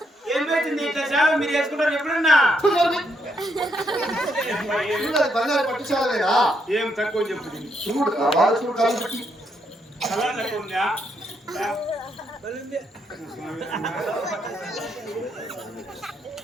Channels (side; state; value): both; normal; correlation 0.76